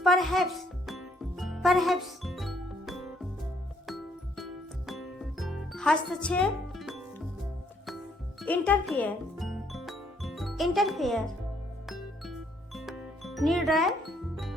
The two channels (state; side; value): normal; both; correlation 0.68